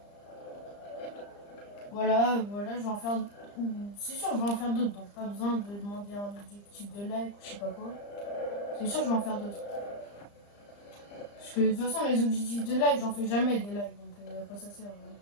voilà, je vais en faire. C'est sûr, je vais en faire d'autres, donc pas besoin de demander un objectif de like ou je sais pas quoi. C'est sûr, je vais en faire d'autres. Parce que de toute façon, les objectifs de like, j'en fais jamais des likes, donc à quoi ça sert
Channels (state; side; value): late; right; 35 ms